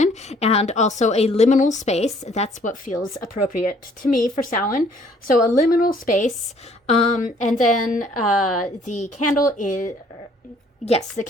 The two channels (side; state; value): both; normal; correlation 0.60